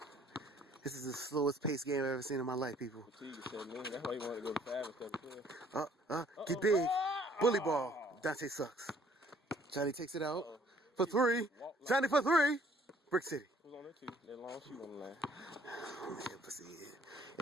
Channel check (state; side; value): normal; both; correlation 0.60